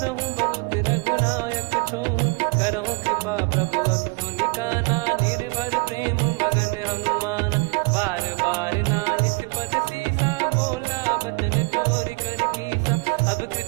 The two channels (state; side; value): quieter; left; 29.9 dB